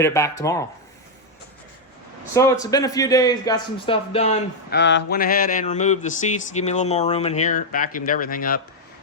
it back tomorrow. So it's been a few days, got some stuff done. Went ahead and removed the seats to give me a little more room in here. Vacuumed everything up,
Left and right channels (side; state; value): both; normal; correlation -0.01